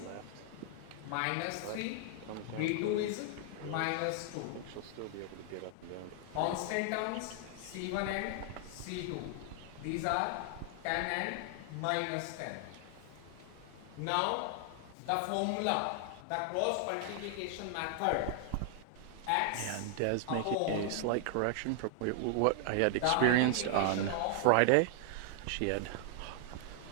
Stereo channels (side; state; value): both; different; correlation 0.00